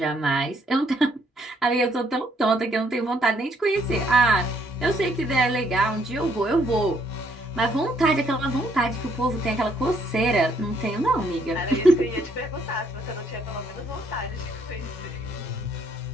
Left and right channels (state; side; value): normal; both; correlation 0.69